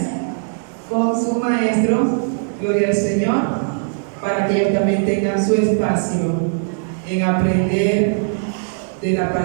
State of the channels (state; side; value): silent; left; digital silence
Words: con su maestro, gloria al Señor, para que ellos también tengan su espacio en aprender de la